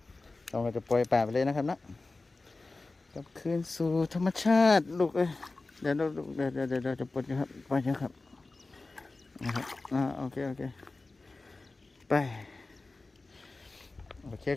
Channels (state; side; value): quieter; right; 3.4 dB